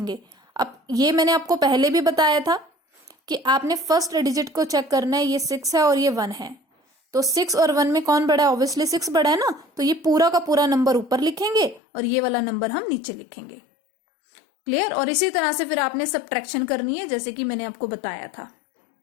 अब ये मैंने आपको पहले भी बताया था कि आपने फर्स्ट डिजिट को चेक करना है, ये 6 है और ये 1 है, तो 6 और 1 में कौन बड़ा है? ऑब्वियसली 6 बड़ा है ना, तो ये पूरा का पूरा नंबर ऊपर लिखेंगे और ये वाला नंबर हम नीचे लिखेंगे। क्लियर? और इसी तरह से फिर आपने सब्ट्रैक्शन करनी है, जैसे कि मैंने आपको बताया था।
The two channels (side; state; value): right; drops out; at 11.8 s